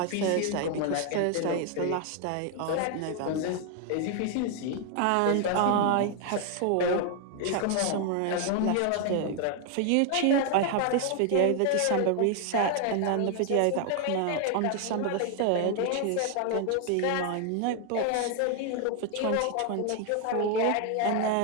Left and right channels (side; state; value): both; different; correlation 0.00